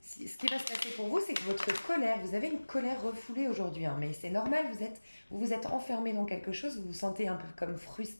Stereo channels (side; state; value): both; inverted; correlation -1.00